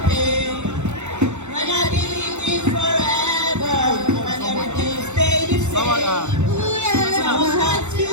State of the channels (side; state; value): left; late; 0.83 ms